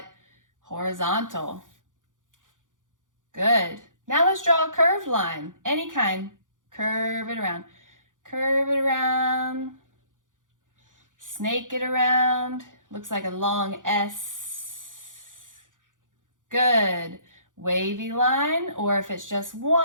horizontal. Good. Now let's draw a curved line, any kind. Curve it around. Curve it around. Snake it around. Looks like a long S. Good. Wavy line, or if it's just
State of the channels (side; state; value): left; late; 0.88 ms